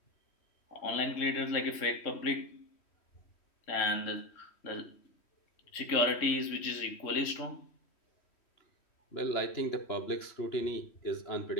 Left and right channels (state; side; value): late; right; 3.1 ms